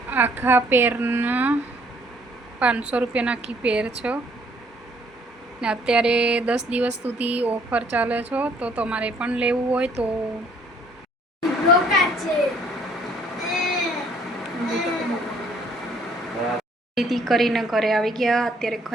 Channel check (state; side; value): normal; both; correlation 0.62